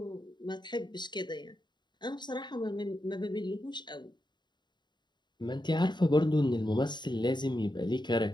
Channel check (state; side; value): late; right; 0.22 ms